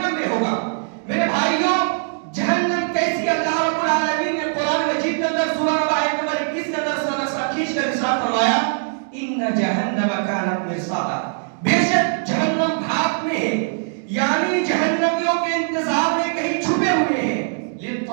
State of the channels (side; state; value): left; silent; digital silence